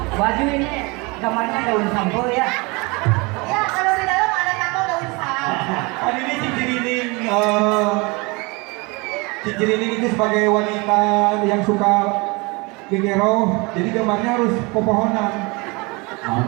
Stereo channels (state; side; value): quieter; left; 27.1 dB